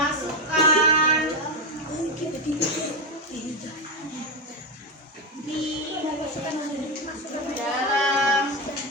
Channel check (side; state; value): both; normal; correlation 0.10